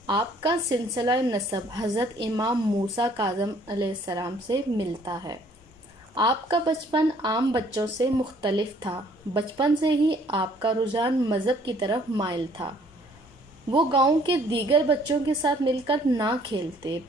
आपका सिलसिला नसब हज़रत इमाम मूसा काज़म अलैहिस्सलाम से मिलता है। आपका बचपन आम बच्चों से मुख्तलिफ था। बचपन से ही आपका रुझान मज़हब की तरफ माइल था। वो गांव के दीगर बच्चों के साथ मिलकर ना खेलते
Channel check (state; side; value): normal; both; correlation 0.60